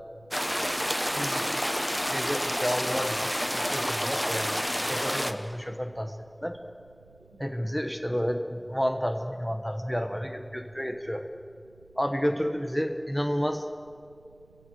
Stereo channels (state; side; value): noise; right; rumble, 27 dB below the sound